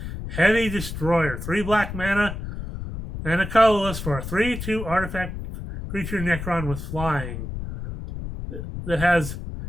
Heavy Destroyer. 3 black mana and a colorless for a 3/2 artifact creature Necron with flying. That has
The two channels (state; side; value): noise; left; rumble, 7 dB below the sound